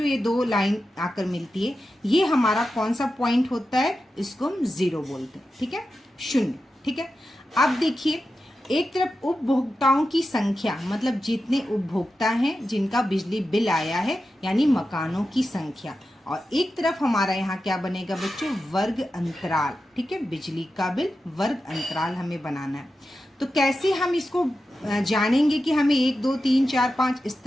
ये 2 लाइन आकर मिलती है, ये हमारा कौन सा पॉइंट होता है, इसको हम 0 बोलते हैं। ठीक है, 0। ठीक है, अब देखिए एक तरफ उपभोक्ताओं की संख्या, मतलब जितने उपभोक्ता हैं जिनका बिजली बिल आया है, यानी मकानों की संख्या, और एक तरफ हमारा यहाँ क्या बनेगा बच्चों, वर्ग अंतराल। ठीक है, बिजली का बिल वर्ग अंतराल हमें बनाना है। तो कैसे हम इसको जानेंगे कि हमें 1 2 3 4 5 इस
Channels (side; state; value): both; normal; correlation 0.91